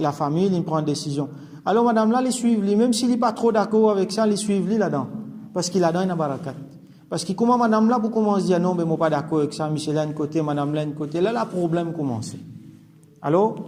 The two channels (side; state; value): both; identical; correlation 1.00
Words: la famille, il prend une décision. Alors madame là, les suivent, même s'il n'est pas trop d'accord avec ça, les suivent là-dedans. Parce qu'il a dans une barakat. Parce que comment madame là, pour commencer à dire non, mais moi pas d'accord avec ça, monsieur là un côté, madame là un côté, là, le problème commence. Alors,